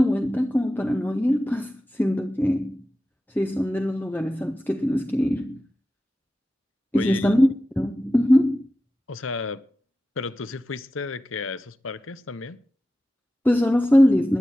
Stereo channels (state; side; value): normal; both; correlation 0.94